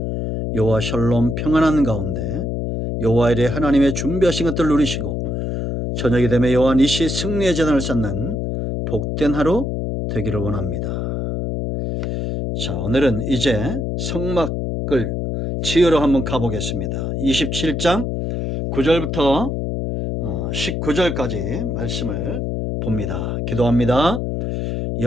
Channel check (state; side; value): noise; left; hum, 2 dB below the sound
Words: 여호와 샬롬 평안한 가운데 여호와 이레 하나님의 준비하신 것들을 누리시고 저녁이 되면 여호와 니시 승리의 재단을 쌓는 복된 하루 되기를 원합니다. 자, 오늘은 이제 성막을 지으러 한번 가보겠습니다. 27장 9절부터 19절까지 말씀을 봅니다. 기도합니다.